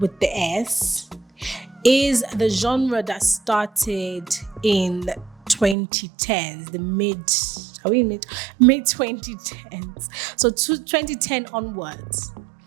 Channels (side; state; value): left; drops out; at 5.8 s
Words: the S is the genre that started in 2010s, the mid 2010s. So 2010 onwards,